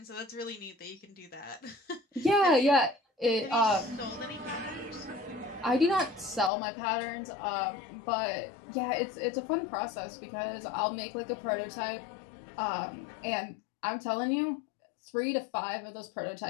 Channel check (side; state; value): right; drops out; at 6.5 s